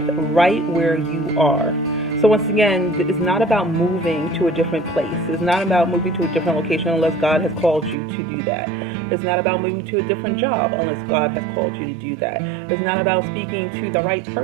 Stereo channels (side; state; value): left; drops out; at 8.0 s